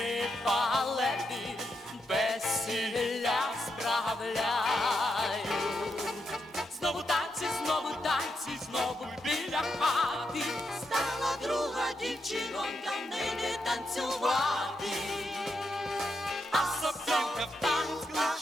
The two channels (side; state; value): both; normal; correlation 0.83